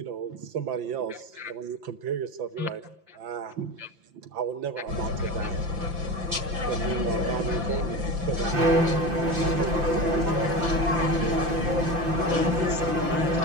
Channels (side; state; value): left; late; 5.8 ms